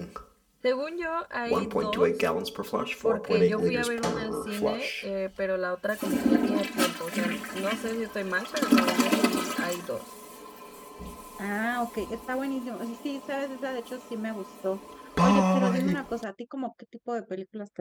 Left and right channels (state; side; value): identical; both; correlation 1.00